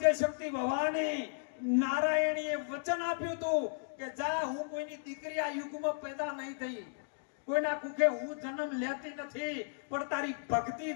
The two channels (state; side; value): silent; right; digital silence